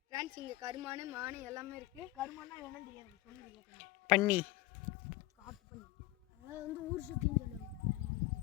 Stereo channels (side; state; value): right; quieter; 18.0 dB